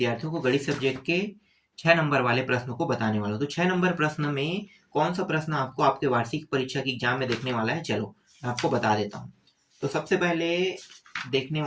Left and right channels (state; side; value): identical; both; correlation 1.00